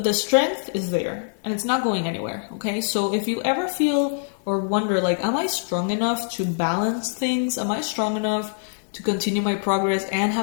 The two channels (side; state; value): right; silent; digital silence